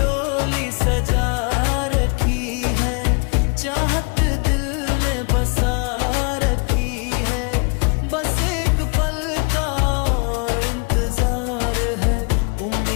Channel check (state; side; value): quieter; right; 33.7 dB